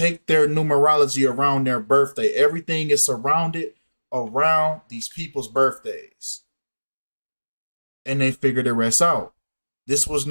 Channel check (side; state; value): both; inverted; correlation -1.00